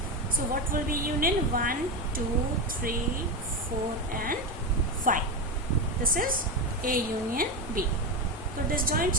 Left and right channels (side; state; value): both; normal; correlation 0.15